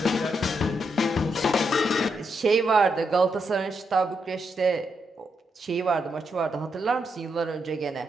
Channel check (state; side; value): normal; both; correlation 0.81